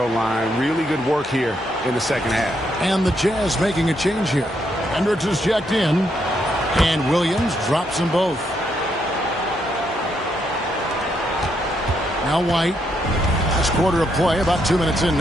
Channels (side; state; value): both; normal; correlation 0.77